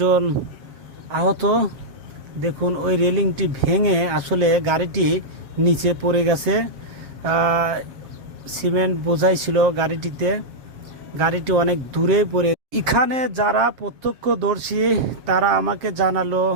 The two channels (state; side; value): late; left; 7.6 ms